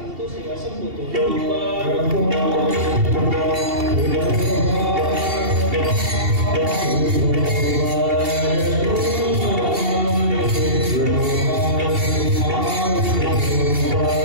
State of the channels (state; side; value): late; left; 2.7 ms